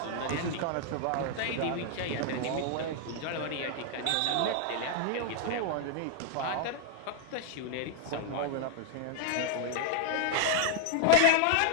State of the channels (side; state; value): both; different; correlation 0.00